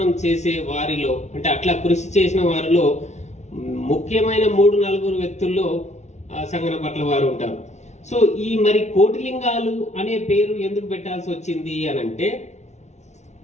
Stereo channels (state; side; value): late; right; 0.33 ms